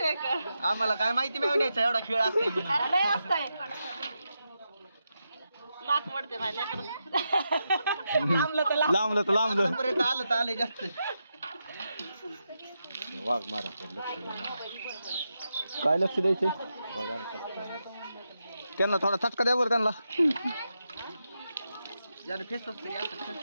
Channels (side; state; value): both; inverted; correlation -0.86